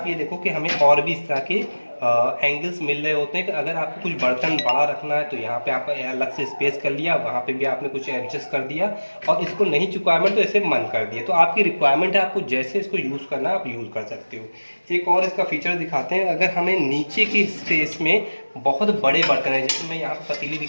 ये देखो कि हमें और भी इस तरह के एंगल्स मिल रहे होते हैं कि अगर आपको कुछ बर्तन बड़ा रखना है तो यहाँ पे आप अलग से स्पेस कर लिया, वहाँ पे भी आपने कुछ एडजस्ट कर दिया, और इसको नहीं रिक्वायरमेंट तो ऐसे मन कर दिया। तो आपकी रिक्वायरमेंट है, आपको जैसे इसको यूज़ करना है आप यूज़ कर सकते हो। एक और इसका फीचर दिखाते हैं, अगर हमें नीचे की स्पेस में बहुत बड़े बर्तन है, जैसे मैं यहाँ पर पतीली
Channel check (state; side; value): inverted; both; correlation -1.00